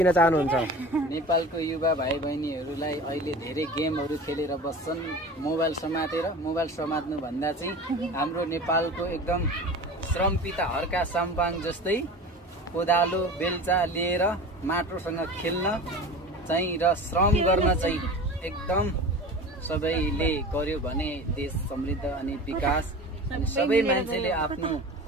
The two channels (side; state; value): both; normal; correlation 0.35